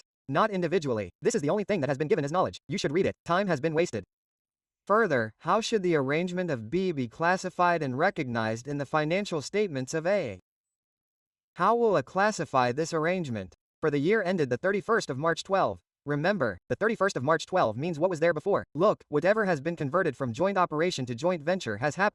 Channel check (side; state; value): both; identical; correlation 1.00